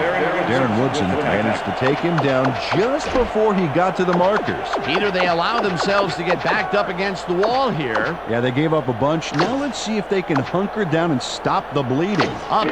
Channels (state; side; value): identical; both; correlation 1.00